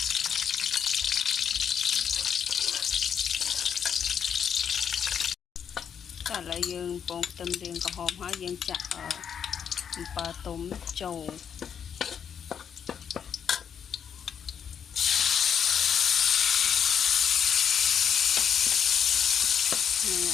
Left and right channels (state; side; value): quieter; right; 7.9 dB